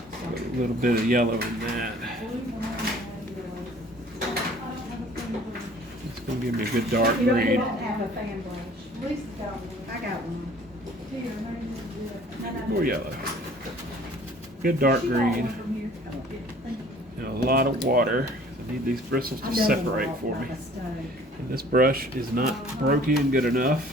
A little bit of yellow in that. It's going to give me a good dark You don't green. have a fan brush. Lisa's got one. I got one. More yellow. Good dark green. And a lot of water. I need these bristles to separate for me. And this brush is not broken good enough.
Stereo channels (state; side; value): normal; both; correlation 0.52